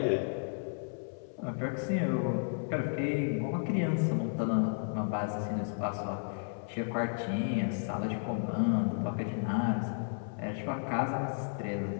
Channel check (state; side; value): silent; right; 56 dB below the other